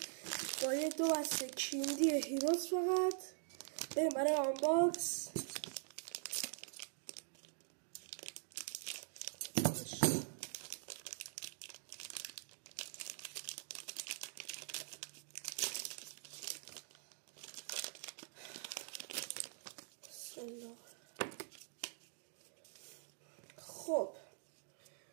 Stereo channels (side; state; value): left; silent; digital silence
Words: با یه 2 بسته کیندی هیروز فقط بریم برای آنباکس. خب